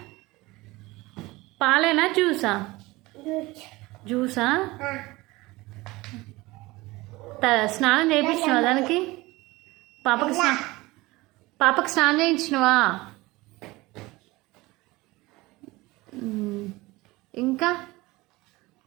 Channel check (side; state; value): left; quieter; 21.0 dB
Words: పాలేనా జ్యూసా? జ్యూసా? స్నానం చేయించినవా దానికి? పాపకి స్నానం చేయించినవా? ఇంకా